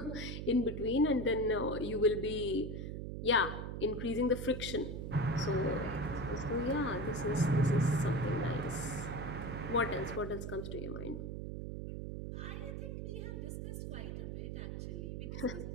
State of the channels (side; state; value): right; noise; hum, 5 dB below the sound